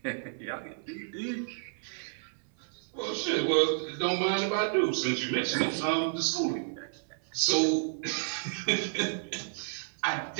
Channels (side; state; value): left; silent; 57 dB below the other